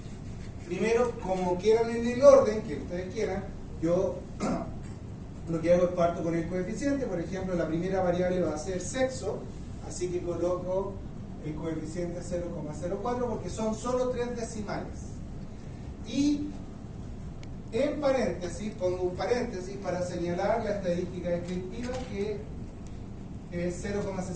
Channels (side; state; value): both; identical; correlation 1.00